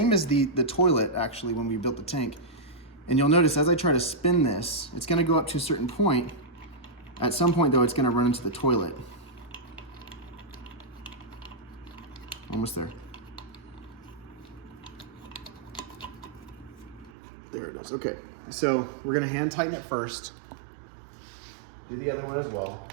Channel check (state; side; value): drops out; left; at 17.1 s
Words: as the toilet actually when we built the tank. And you'll notice as I try to spin this, it's gonna go up to a certain point. At some point though, it's gonna run into the toilet. Almost there. There it is, okay. So we're gonna hand tighten it first. Do the other one as well.